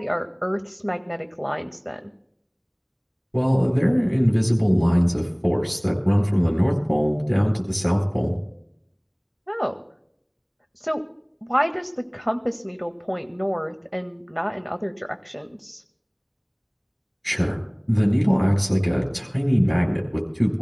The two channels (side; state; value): both; identical; correlation 1.00